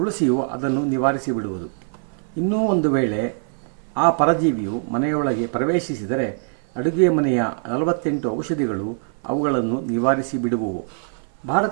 ಅದನ್ನು ನಿವಾರಿಸಿಬಿಡುವುದು. ಇನ್ನೂ ಒಂದು ವೇಳೆ ಆ ಪರಜೀವಿಯು ಮನೆಯೊಳಗೆ ಪ್ರವೇಶಿಸಿದರೆ ಅಡುಗೆ ಮನೆಯ 48 ಔಷಧಿಗಳು ಅವುಗಳನ್ನು ನಿವಾರಿಸಿ ಬಿಡುವುವು.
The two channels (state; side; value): silent; left; 56 dB below the other